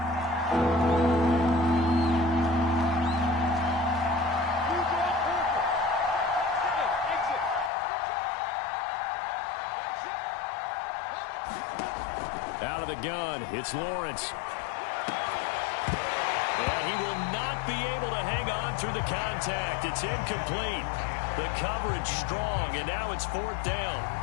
Out of the gun, it's Lawrence. And he will not be able to hang on through the contact. It's incomplete. The coverage strong, and now it's 4th down.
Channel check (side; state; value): right; drops out; at 7.7 s